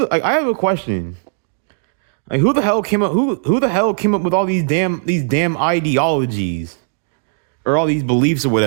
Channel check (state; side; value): silent; left; digital silence